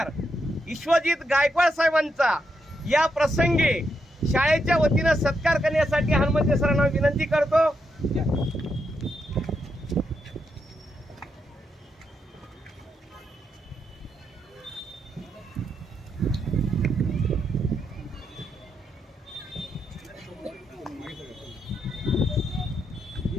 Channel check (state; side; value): normal; both; correlation 0.82